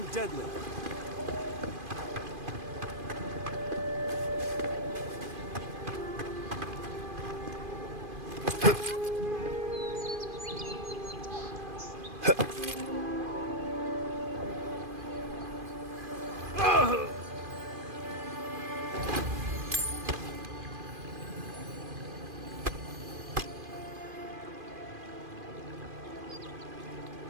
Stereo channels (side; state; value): left; late; 2.5 ms